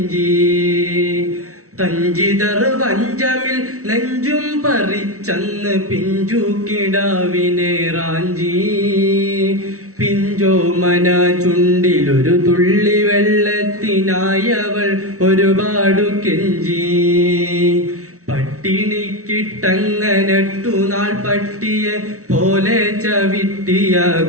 തഞ്ചിതർ വഞ്ചമിൽ നെഞ്ചും പറിച്ചന്ന് പിഞ്ചു കിടാവിനെ റാഞ്ചി, പിഞ്ചോമന ചുണ്ടിലൊരു തുള്ളി വെള്ളത്തിനായവൾ ഒരുപാടു കെഞ്ചി. പട്ടിണിക്കിട്ടങ്ങനട്ടു നാൾ പട്ടിയെ പോലെ ചവിട്ടിയ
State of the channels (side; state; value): left; late; 0.64 ms